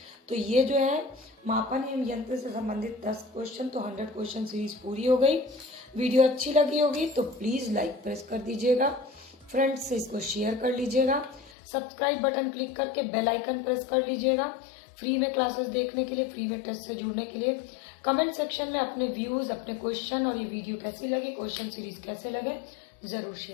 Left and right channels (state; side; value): drops out; right; at 11.5 s